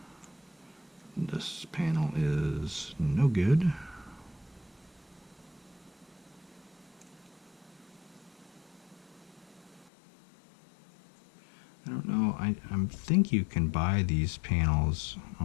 This panel is no good. I don't know, I think you can buy these panels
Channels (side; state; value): right; drops out; at 9.9 s